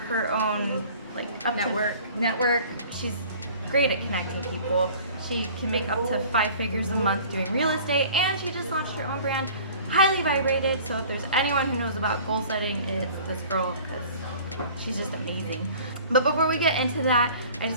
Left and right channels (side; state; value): both; inverted; correlation -0.47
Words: own network. She's great at connecting people. She can make up to 5 figures a month doing real estate, and she just launched her own brand, Highly Vibrated. So if there's anyone who knows about goal setting, it's this girl, because she's just amazing. But before we get into that, I